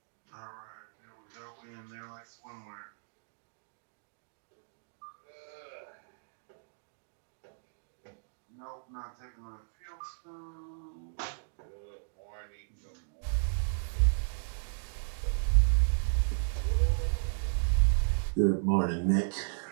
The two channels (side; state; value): left; silent; digital silence